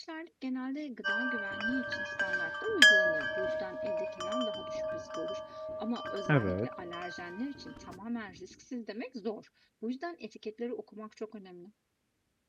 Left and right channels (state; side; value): identical; both; correlation 1.00